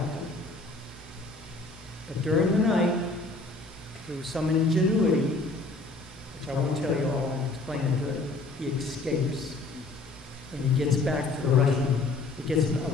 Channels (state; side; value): quieter; right; 3.3 dB